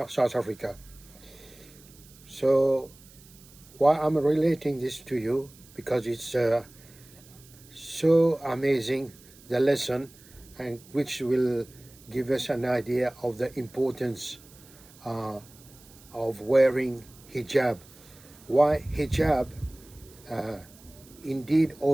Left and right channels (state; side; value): noise; right; hiss, 24 dB below the sound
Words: Africa. So why I'm relating this to you, because it's so amazing, the lesson, and which will give us an idea of the importance uh, of wearing hijab. Why hijab uh, indeed